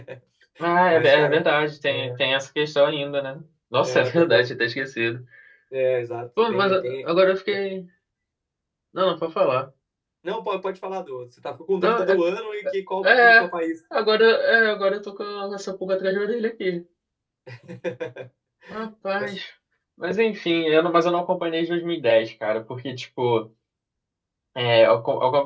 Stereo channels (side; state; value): both; identical; correlation 1.00